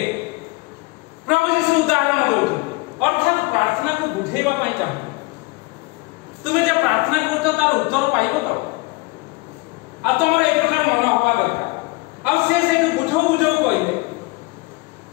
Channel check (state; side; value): quieter; right; 24.4 dB